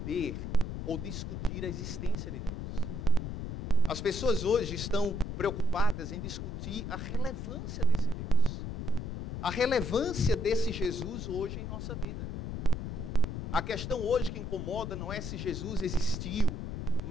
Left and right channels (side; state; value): left; noise; rumble, 4 dB below the sound